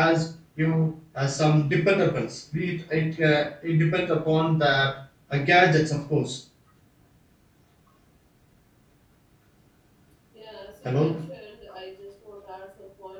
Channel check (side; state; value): both; identical; correlation 1.00